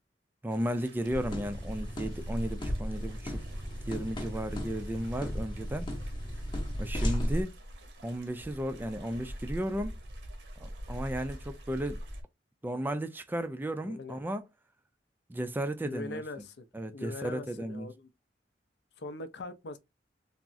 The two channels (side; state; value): both; normal; correlation 0.87